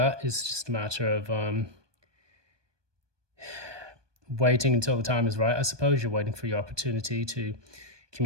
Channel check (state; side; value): late; left; 1.2 ms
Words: It's just a matter of waiting until the time is right. I suppose you're waiting for your opportunity to